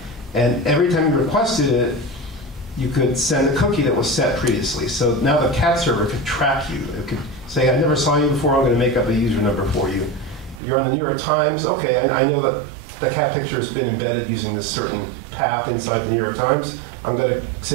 And every time you requested it, you could send a cookie that was set previously. So now the cat server could track you. It could say, I never saw you before, I'm going to make up a user number for you. You're on the New York Times, okay, I know that the cat picture has been embedded using this certain path inside the New York Times. I'm going to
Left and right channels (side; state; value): left; drops out; at 10.6 s